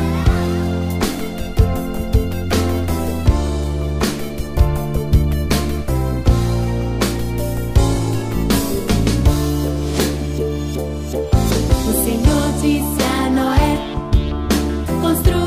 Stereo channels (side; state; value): both; identical; correlation 1.00